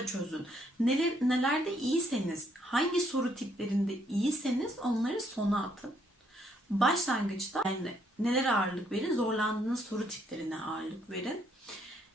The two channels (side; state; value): both; normal; correlation 0.70